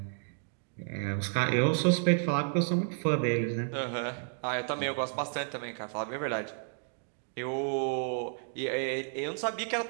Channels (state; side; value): silent; left; digital silence